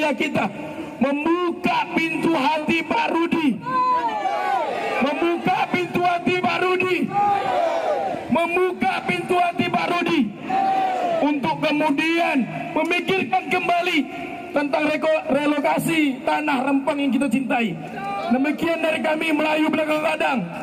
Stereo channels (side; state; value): both; identical; correlation 1.00